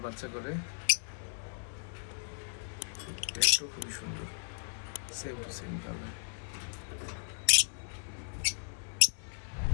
বাচ্চা করে। পেটও খুবই সুন্দর, সেম টু সেম কালার।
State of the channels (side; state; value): right; silent; digital silence